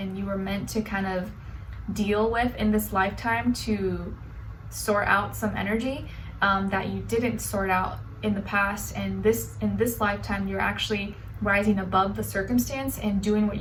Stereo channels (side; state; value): both; identical; correlation 1.00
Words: you were meant to kind of deal with in this lifetime to sort out some energy that you didn't sort out in the past. And in this lifetime, you're actually rising above the circumstance and doing what